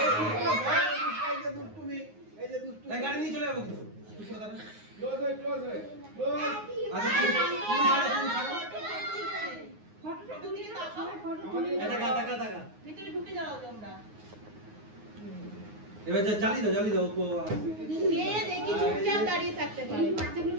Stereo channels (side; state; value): left; late; 9.6 ms